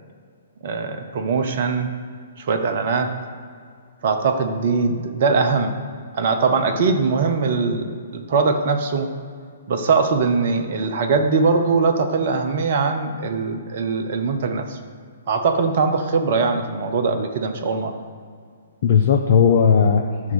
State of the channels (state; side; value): inverted; both; correlation -0.48